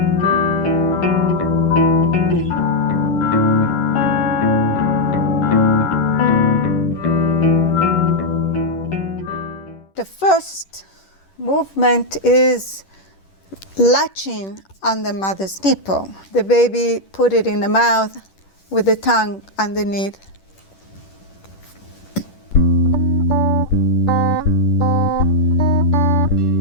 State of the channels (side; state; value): right; late; 10 ms